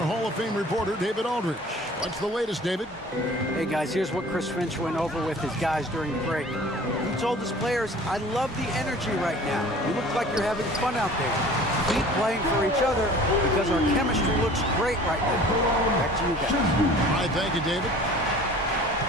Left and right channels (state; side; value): normal; both; correlation 0.46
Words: Hall of Fame reporter, David Aldridge. What's the latest, David? Hey, guys, here's what Chris Finch went over with his guys during the break. He told his players, I love the energy right now. You look like you're having fun out there. Keep playing for each other because our chemistry looks great right now. Back to you guys. All right, thank you, David.